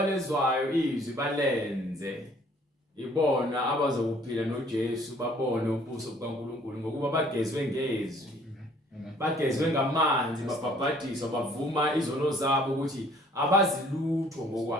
izwi balenze, ibona abazokuphila noJesu, babone ubuso bukaNkulunkulu, ngokuba bagezwe ngezwi. Bagezwe ngamanzi, babhabhadiswa, bavuma izono zabo ukuthi abazilutho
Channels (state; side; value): normal; both; correlation 0.58